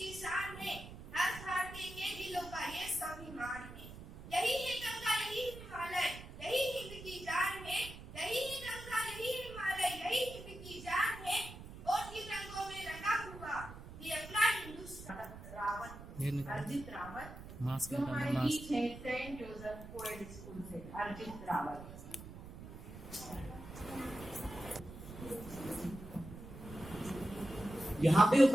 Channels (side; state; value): right; noise; rumble, 13 dB below the sound